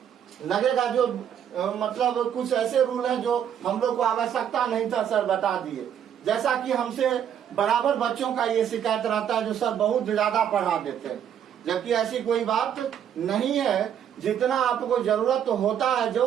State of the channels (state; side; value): quieter; left; 9.2 dB